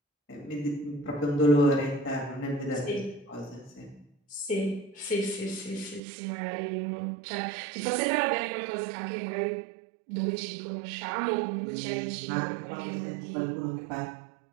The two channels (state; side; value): drops out; left; at 6.0 s